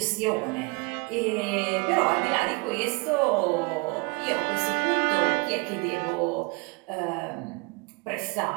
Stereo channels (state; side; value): quieter; left; 27.9 dB